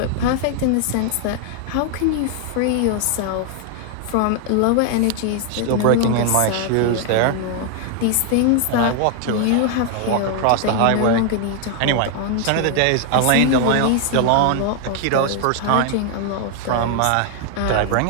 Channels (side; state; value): both; different; correlation 0.00